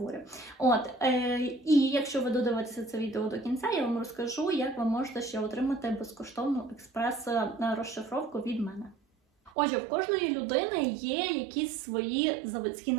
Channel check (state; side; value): drops out; left; at 9.5 s